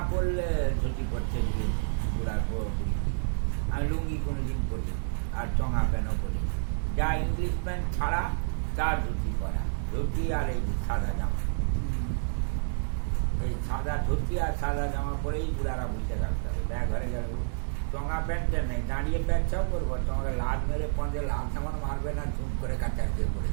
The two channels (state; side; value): silent; left; digital silence